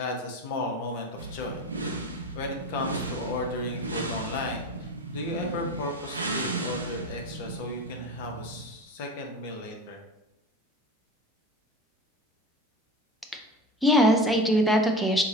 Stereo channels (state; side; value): normal; both; correlation 0.30